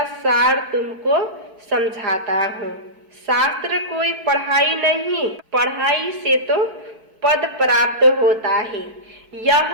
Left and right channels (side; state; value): left; late; 4.6 ms